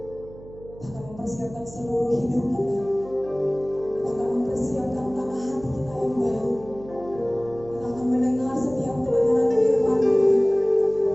Kita akan mempersiapkan seluruh hidup kita. Kita akan mempersiapkan tanah hati kita yang baru. Kita akan mendengar setiap kebenaran firman Tuhan.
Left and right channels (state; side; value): noise; right; hum, 18 dB below the sound